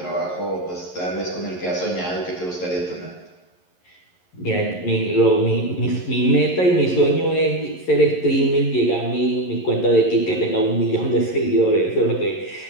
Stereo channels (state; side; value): late; right; 11 ms